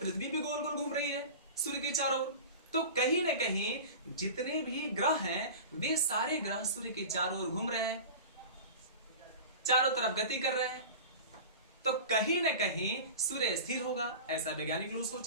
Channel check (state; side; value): inverted; both; correlation -0.33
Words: भी गोल गोल घूम रही है सूर्य के चारों ओर। तो कहीं ना कहीं जितने भी ग्रह हैं वे सारे ग्रह सूर्य के चारों ओर घूम रहे हैं, चारों तरफ गति कर रहे हैं। तो कहीं ना कहीं सूर्य स्थिर होगा, ऐसा वैज्ञानिक लोग